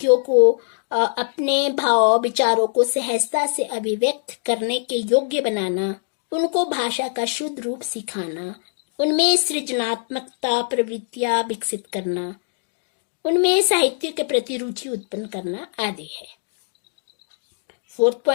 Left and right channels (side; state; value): right; silent; digital silence